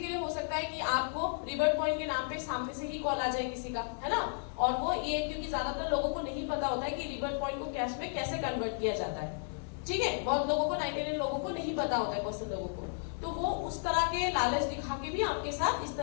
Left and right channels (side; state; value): right; silent; 55 dB below the other